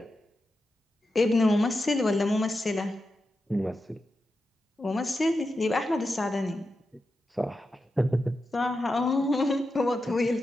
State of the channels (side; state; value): both; normal; correlation 0.90